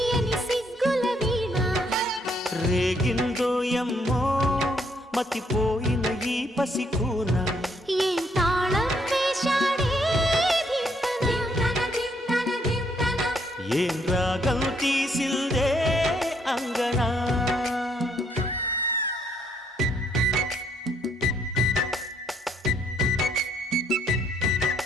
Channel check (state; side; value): normal; both; correlation 0.70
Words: సిగ్గుల వీణ రేగిందో యమ్మో మతిపోయిన ఈ పసికూన ఏం తాళం వేశాడే ఏం రాగం తీసిందే అంగనా